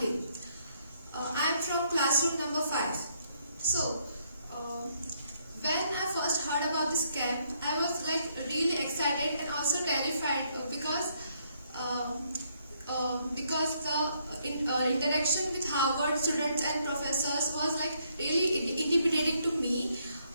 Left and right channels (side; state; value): both; inverted; correlation -0.71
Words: I am from classroom number 5. So, when I first heard about this camp, I was like really excited and also terrified because the interaction with Harvard students and professors was like really intimidating to me.